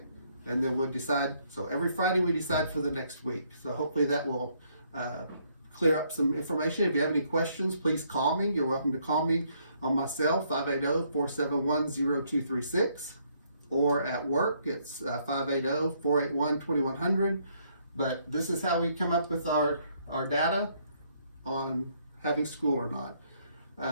and then we'll decide. So every Friday we decide for the next week. So hopefully that will clear up some information. If you have any questions, please call me. You're welcome to call me on my cell, 580-471-0236, or at work, it's 580-481-2100. But this is how we come up with our data on having school or not.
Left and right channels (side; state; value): both; inverted; correlation -0.69